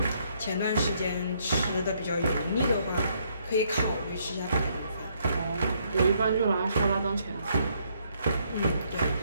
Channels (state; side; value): inverted; both; correlation -0.71